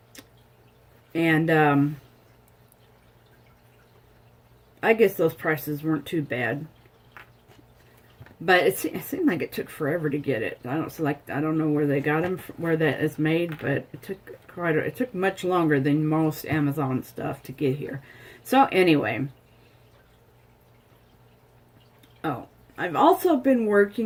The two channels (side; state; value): both; identical; correlation 1.00